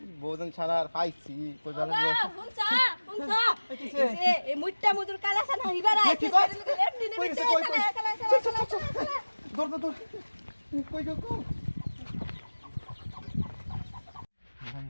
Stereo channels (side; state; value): both; inverted; correlation -1.00